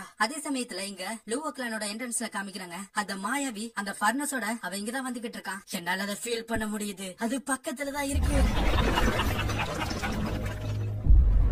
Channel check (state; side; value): identical; both; correlation 1.00